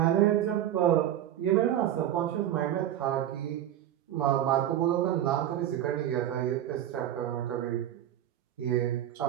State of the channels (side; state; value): left; quieter; 11.7 dB